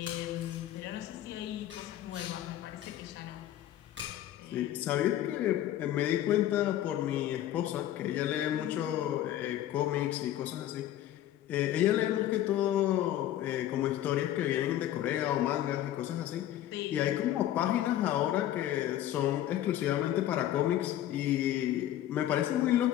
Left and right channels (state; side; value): quieter; right; 12.6 dB